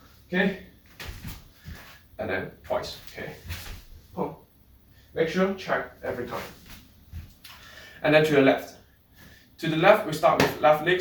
Okay, and then twice. Okay, boom. Make sure check every time. And then to the left. To the left, we start with left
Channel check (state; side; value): identical; both; correlation 1.00